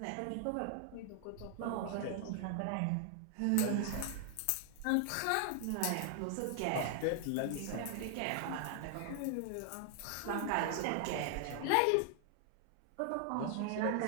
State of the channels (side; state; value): both; different; correlation 0.00